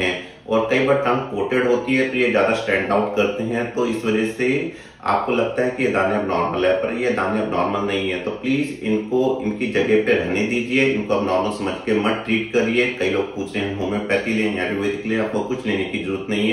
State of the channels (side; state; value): both; identical; correlation 1.00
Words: और कई बार टंग कोटेड होती है तो ये ज्यादा स्टैंड आउट करते हैं, तो इस वजह से आपको लगता है कि ये दाने अब नॉर्मल है, पर ये दाने अब नॉर्मल नहीं है। तो प्लीज इनको इनकी जगह पे रहने दीजिए, इनको अब नॉर्मल समझ के मत ट्रीट करिए। कई लोग पूछ रहे हैं होम्योपैथी लें, आयुर्वेदिक लें, आपको कुछ लेने की जरूरत नहीं